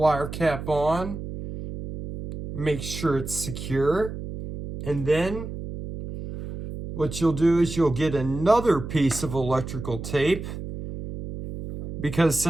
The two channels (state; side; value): noise; right; hum, 8 dB below the sound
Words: cap on. Make sure it's secure. And then what you'll do is you'll get another piece of electrical tape, because